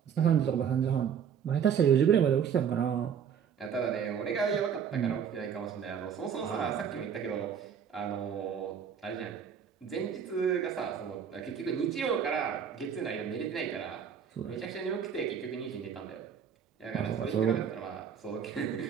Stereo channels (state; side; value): quieter; left; 7.7 dB